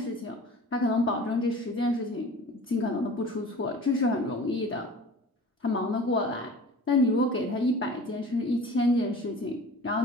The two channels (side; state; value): both; normal; correlation 0.42